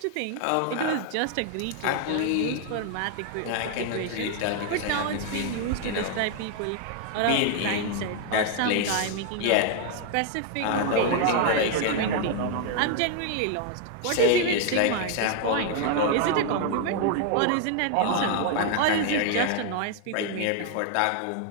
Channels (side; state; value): both; different; correlation 0.00